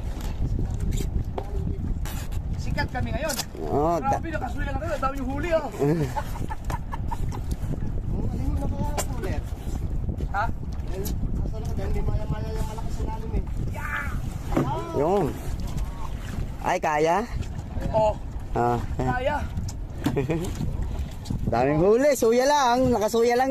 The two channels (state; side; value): identical; both; correlation 1.00